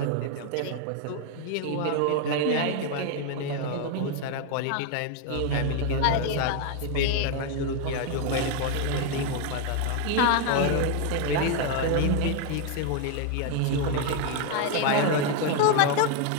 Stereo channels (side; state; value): both; different; correlation 0.00